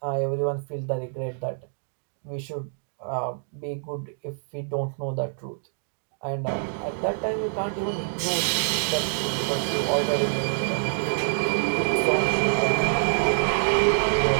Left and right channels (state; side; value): silent; left; digital silence